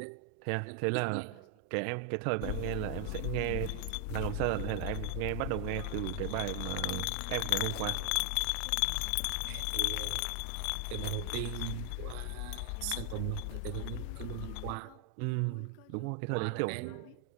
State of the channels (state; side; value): different; both; correlation 0.00